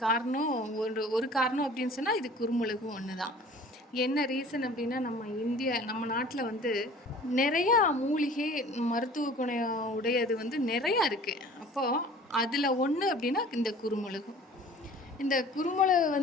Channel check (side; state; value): both; normal; correlation 0.47